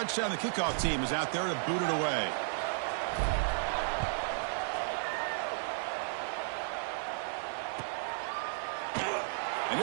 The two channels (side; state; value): left; silent; digital silence